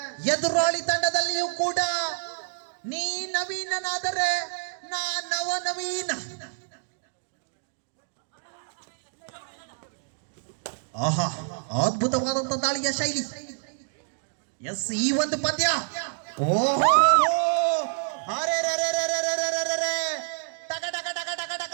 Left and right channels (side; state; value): left; silent; 58 dB below the other